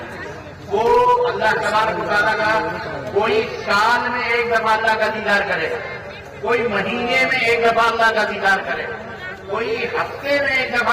وہ اللہ تبارک و تعالیٰ کا کوئی سال میں ایک دفعہ اللہ کا دیدار کرے گا, کوئی مہینے میں ایک دفعہ اللہ کا دیدار کرے گا, کوئی ہفتے میں ایک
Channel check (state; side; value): identical; both; correlation 1.00